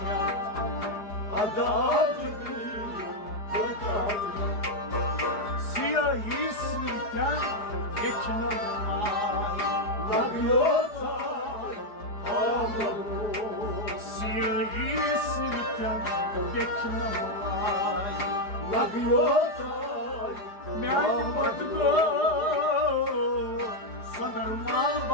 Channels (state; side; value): late; right; 4.9 ms